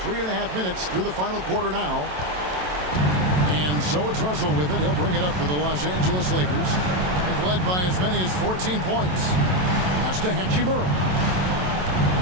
3.5 minutes through the final quarter now. And so it's Russell with it. He'll bring it up for the Los Angeles Lakers. They've led by as many as 14 points. Pass to Hachimura.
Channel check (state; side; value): late; left; 27 ms